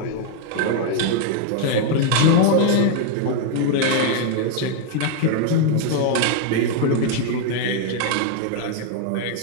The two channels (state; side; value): different; both; correlation 0.00